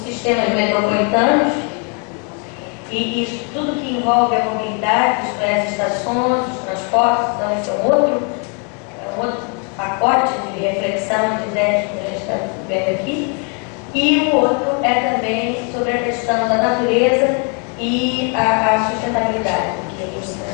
metropolitanos e isso tudo que envolve a mobilidade, isto é, as estações, os transportes. Então esse é um outro pacote de reflexão, de ideias que a gente está vendo aqui. E o outro é também sobre a questão da natureza e a sustentabilidade, que os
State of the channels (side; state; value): right; quieter; 37.6 dB